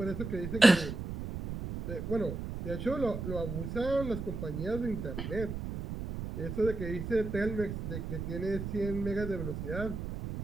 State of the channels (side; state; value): right; noise; rumble, 5 dB below the sound